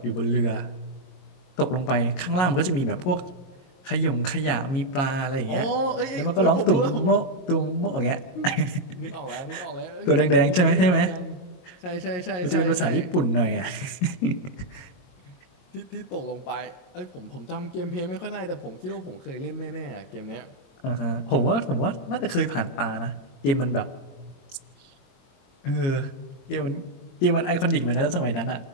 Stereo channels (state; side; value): late; right; 22 ms